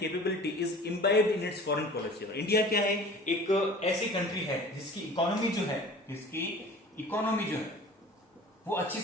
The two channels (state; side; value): normal; both; correlation 0.43